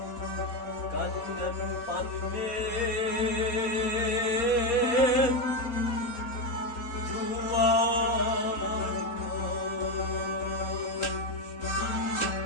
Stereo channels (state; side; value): late; right; 4.1 ms